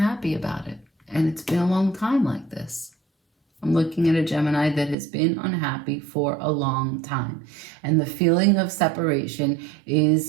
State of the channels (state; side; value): drops out; left; at 5.0 s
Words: about it. And it's been a long time like this. I'm looking at a Gemini that has been unhappy for a long time. And the feeling of separation